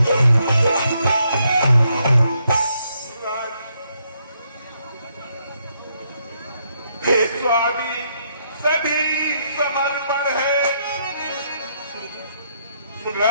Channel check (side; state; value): both; inverted; correlation -0.75